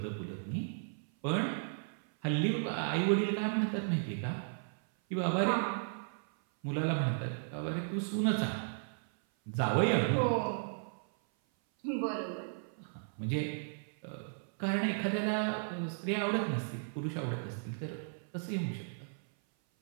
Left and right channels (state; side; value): silent; left; 54 dB below the other